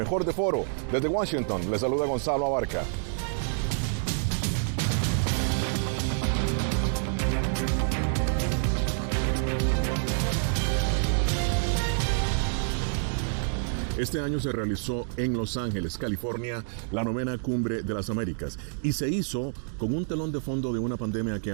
de Foro. Desde Washington, les saluda Gonzalo Abarca. Este año se realizó en Los Ángeles, California, la 9ª Cumbre de las Américas y se hizo con un telón de fondo de una pandemia que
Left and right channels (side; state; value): left; silent; digital silence